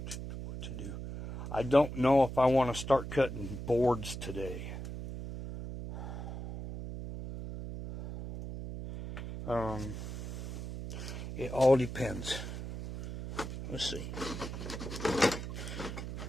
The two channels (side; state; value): right; noise; hum, 7 dB below the sound